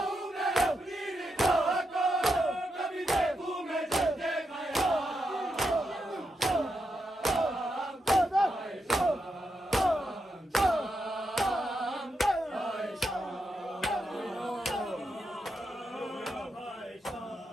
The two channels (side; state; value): both; normal; correlation 0.84